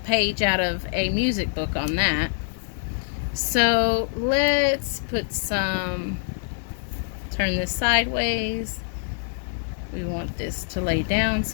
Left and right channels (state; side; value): silent; right; 62 dB below the other